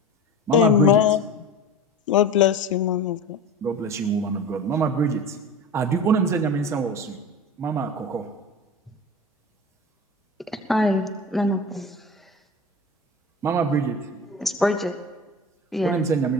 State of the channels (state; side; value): normal; both; correlation 0.31